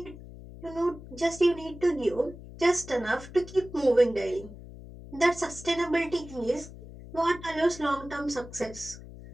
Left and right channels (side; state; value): left; noise; hum, 15 dB below the sound